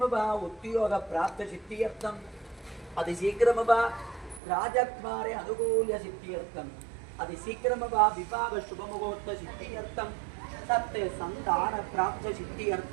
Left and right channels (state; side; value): drops out; left; at 4.4 s